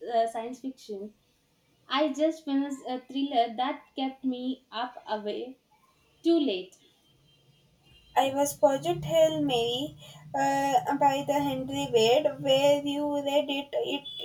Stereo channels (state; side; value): identical; both; correlation 1.00